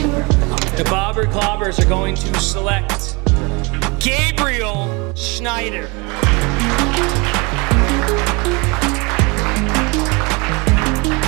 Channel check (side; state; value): left; quieter; 28.4 dB